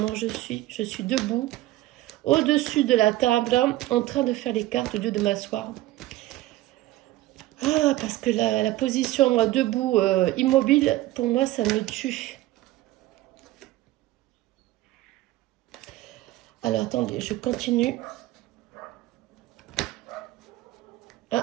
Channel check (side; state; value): left; quieter; 16.5 dB